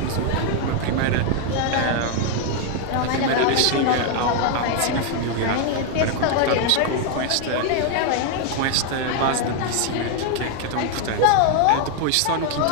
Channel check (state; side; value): different; both; correlation 0.01